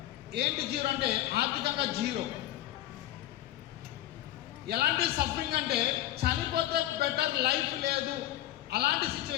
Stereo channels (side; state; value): right; quieter; 14.1 dB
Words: ఏంటి జీరో అంటే ఆర్థికంగా జీరో. ఎలాంటి సఫరింగ్ అంటే చనిపోతే బెటర్ లైఫ్ లేదు, అలాంటి